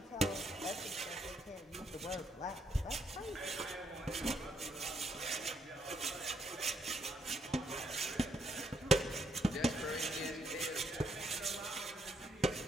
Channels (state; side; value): normal; both; correlation 0.74